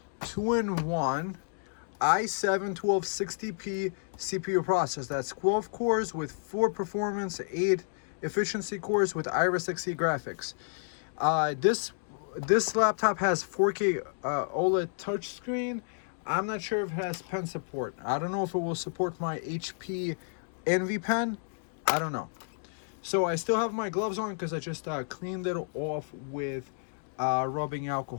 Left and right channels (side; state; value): right; silent; digital silence